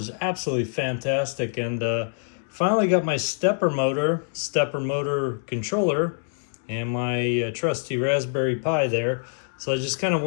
absolutely fantastic. And finally got my stepper motor controller and my trusty Raspberry Pi there. So I just kind of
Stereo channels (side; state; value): right; silent; digital silence